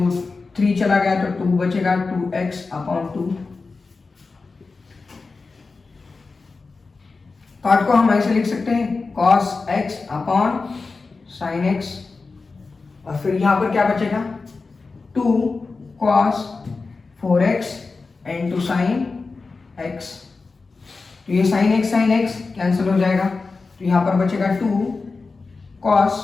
3 चला गया तो 2 बचेगा, 2x अपॉन 2। पार्ट को हम ऐसे लिख सकते हैं cos x upon sin x और फिर यहां पर क्या बचेगा 2 cos 4x into sin x। तो ये sin x कैंसिल हो जाएगा, तो यहां पर बचेगा 2 cos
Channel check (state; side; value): quieter; right; 4.1 dB